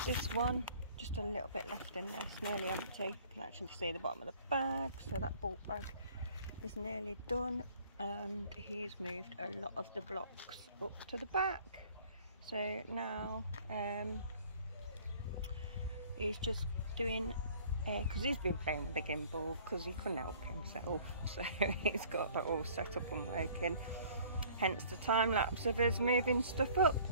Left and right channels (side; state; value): both; inverted; correlation -0.53